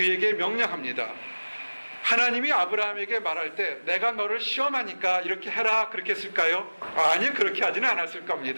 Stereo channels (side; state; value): both; inverted; correlation -1.00